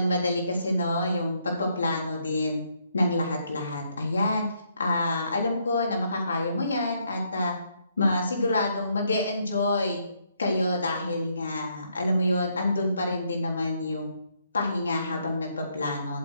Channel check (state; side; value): inverted; both; correlation -0.73